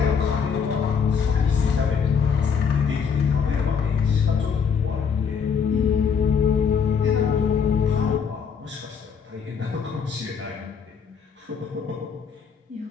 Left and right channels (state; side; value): quieter; right; 6.4 dB